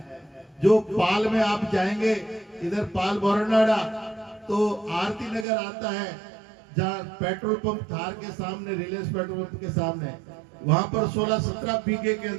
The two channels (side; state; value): left; drops out; at 5.5 s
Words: जो पाल में आप जाएंगे, इधर पाल बोरनाडा तो आरती नगर आता है, जहाँ पेट्रोल पंप थार के सामने, रिलायंस पेट्रोल पंप के सामने, वहां पर 16-17 बीघे के